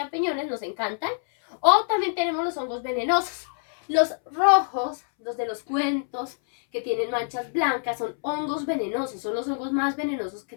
nos encantan. O también tenemos los hongos venenosos. Los rojos, los de los cuentos, que tienen manchas blancas, son hongos venenosos, son los hongos más venenosos que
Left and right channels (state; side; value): silent; right; 61 dB below the other